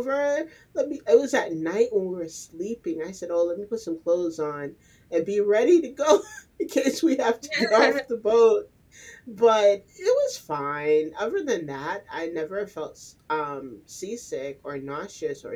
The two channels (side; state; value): both; identical; correlation 1.00